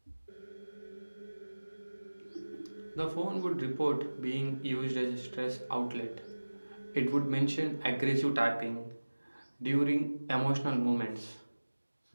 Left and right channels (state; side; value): inverted; both; correlation -1.00